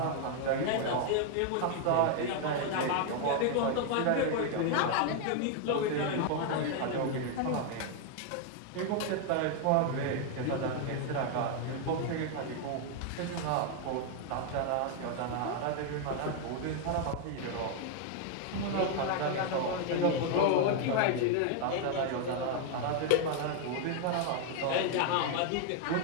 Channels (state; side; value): different; both; correlation 0.00